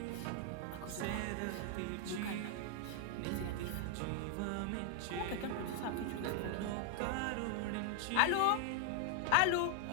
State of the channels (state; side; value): different; both; correlation 0.00